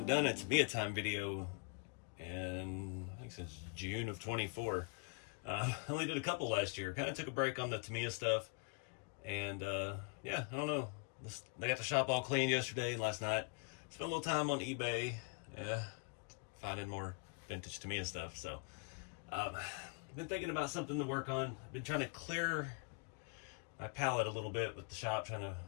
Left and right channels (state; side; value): quieter; right; 39.0 dB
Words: done a Tamiya time video in, I think, since June of 24. I only did a couple last year. Kind of took a break on the Tamiya stuff. And, yeah, I don't know. They got the shop all clean yesterday and last night. Spent a little time on eBay, finding more vintage Tamiya stuff. So, I've been thinking about something to work on. I've been trying to clear my palette a little bit with the shop, trying to